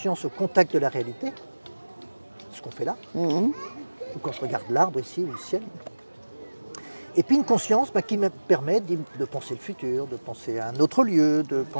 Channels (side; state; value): both; inverted; correlation -1.00